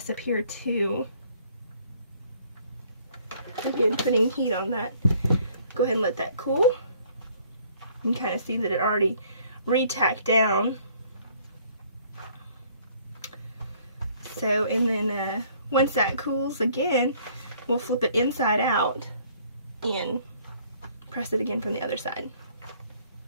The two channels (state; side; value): inverted; both; correlation -0.60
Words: up here too. Again, putting heat on that. Go ahead and let that cool. You can kind of see that it already re-tacked down. So, and then once that cools again, we'll flip it inside out and press it again from the other side.